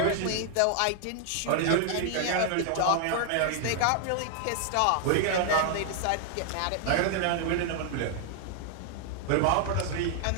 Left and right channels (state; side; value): different; both; correlation 0.00